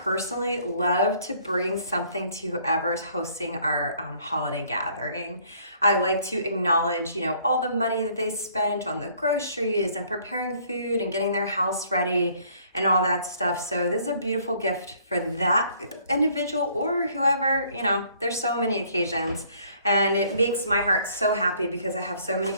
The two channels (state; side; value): inverted; both; correlation -0.61